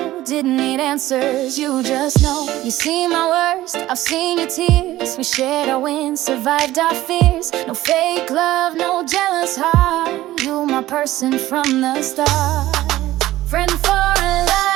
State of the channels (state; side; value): quieter; left; 15.6 dB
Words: Didn't need answers, you just know. You see my worst, I've seen your tears. We shared our wins, survived our fears. No fake love, no jealous heart. You my person from the start. Friend for a